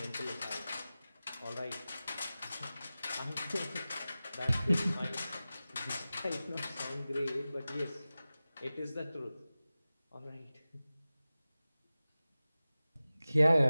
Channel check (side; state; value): both; inverted; correlation -0.96